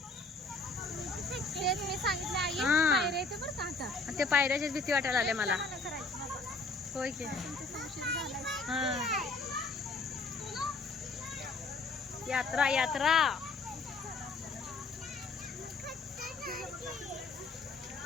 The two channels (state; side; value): quieter; right; 3.5 dB